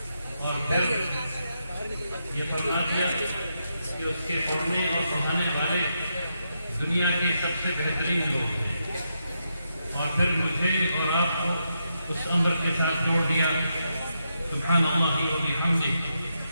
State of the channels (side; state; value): both; inverted; correlation -0.83